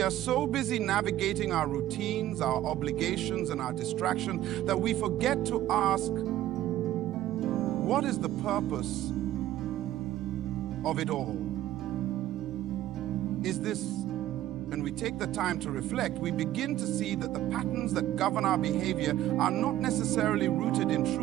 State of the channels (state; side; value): quieter; left; 13.6 dB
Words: are so busy navigating our routines, our obligations, and our distractions that we forget to ask, what is the purpose of it all? Is this, when we take the time to reflect, we begin to see that the patterns that govern our behavior are not necessarily rooted in